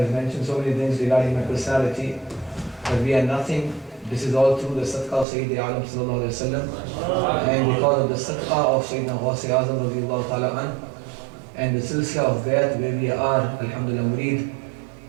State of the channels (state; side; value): drops out; left; at 5.2 s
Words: mentioned so many things regarding my personality but we are nothing. This is all through the sadaqah of Sayyid Alam sallallahu alayhi wa sallam and because of the sadaqah of Sayyidina Ghawth Azam radiyallahu ta'ala an and the silsila of Bayat where we are alhamdulillah murid